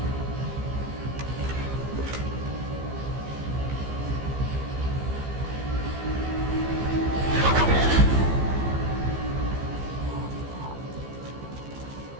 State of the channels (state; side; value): late; left; 15 ms